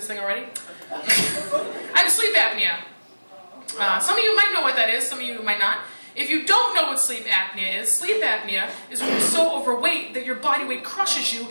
thing already. I have sleep apnea. Some of you might know what that is, some of you might not. If you don't know what sleep apnea is when you're so overweight that your body weight crushes you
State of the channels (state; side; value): inverted; both; correlation -1.00